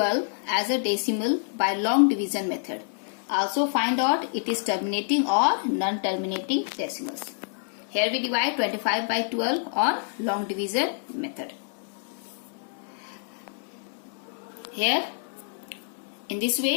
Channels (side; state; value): right; silent; digital silence